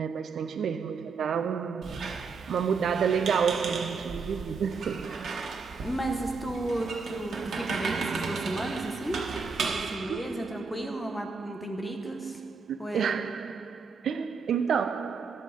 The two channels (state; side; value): quieter; left; 4.9 dB